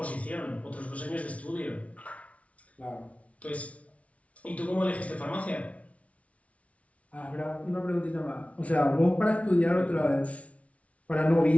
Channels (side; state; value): right; late; 0.065 ms